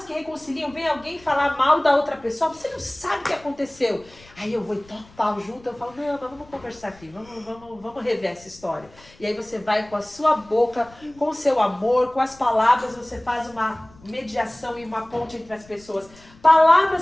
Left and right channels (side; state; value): left; noise; rumble, 25 dB below the sound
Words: que reconciliam? Vem alguém falar mal da outra pessoa, você não sabe o que aconteceu. Aí eu vou e toco pau junto, eu falo, não, mas vamos conversar aqui, vamos rever essa história. E aí você vai com a sua boca, com o seu amor, com as palavras, você faz uma mediação e uma ponte entre as pessoas.